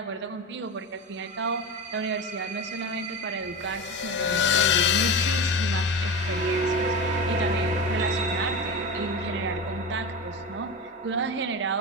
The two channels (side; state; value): both; normal; correlation 0.23